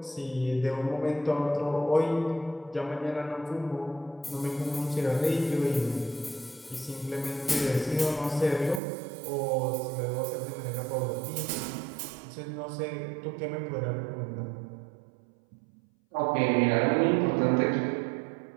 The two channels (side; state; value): left; drops out; at 8.8 s